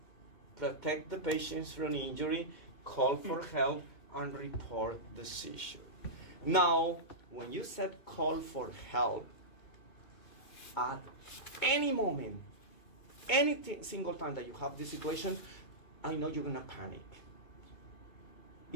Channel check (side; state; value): right; late; 2.2 ms